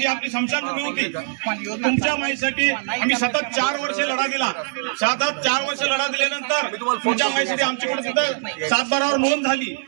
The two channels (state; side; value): silent; left; 64 dB below the other